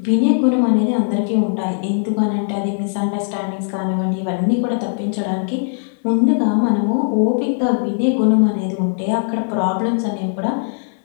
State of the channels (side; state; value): right; silent; 58 dB below the other